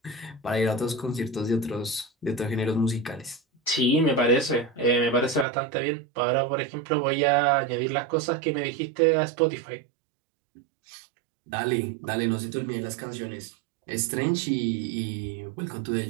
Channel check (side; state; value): left; drops out; at 5.5 s